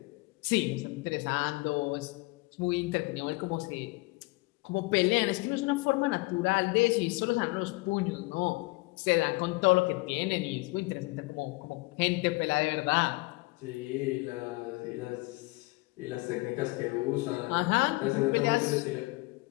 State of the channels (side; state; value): right; quieter; 24.0 dB